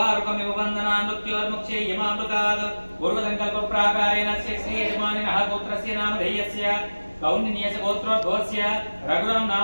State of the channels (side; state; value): both; inverted; correlation -1.00